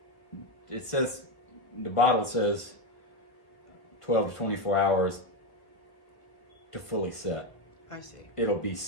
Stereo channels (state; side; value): late; right; 1.1 ms